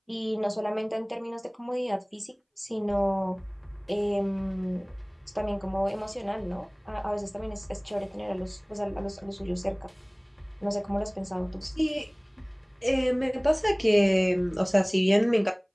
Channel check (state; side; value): identical; both; correlation 1.00